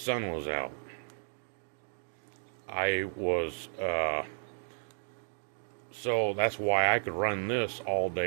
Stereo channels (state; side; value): silent; left; digital silence